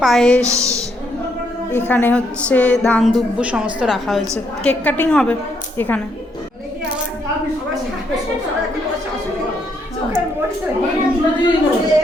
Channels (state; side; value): normal; both; correlation 0.74